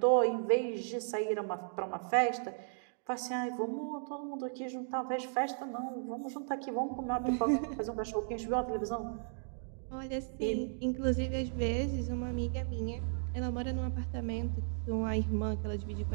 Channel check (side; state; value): left; silent; digital silence